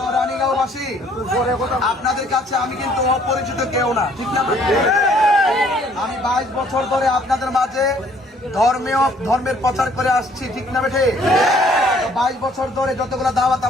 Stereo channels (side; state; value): both; normal; correlation 0.61